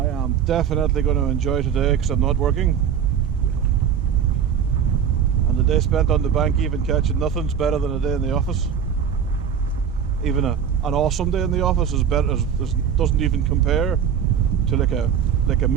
am definitely going to enjoy today because I'm not working, and the day spent on the bank even catching nothing's better than a day in the office. Even an awesome day in the office is better, doesn't even compare to like a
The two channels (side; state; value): left; quieter; 8.0 dB